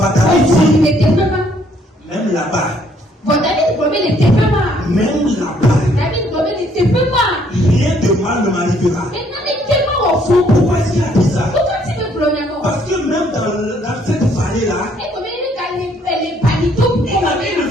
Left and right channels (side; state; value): both; normal; correlation 0.66